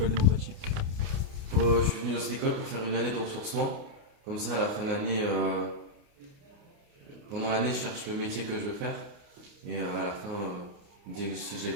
démocratique. Je suis venu dans cette école pour faire une année de ressourcement. Comme ça, à la fin de l'année, pendant l'année, je cherche le métier que je veux faire. Et à la fin, dès que si je l'ai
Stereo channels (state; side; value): late; left; 29 ms